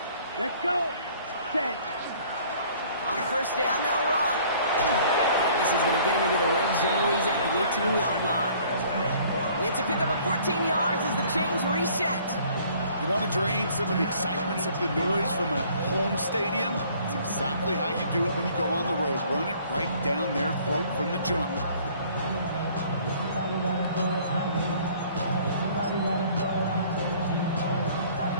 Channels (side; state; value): both; inverted; correlation -0.56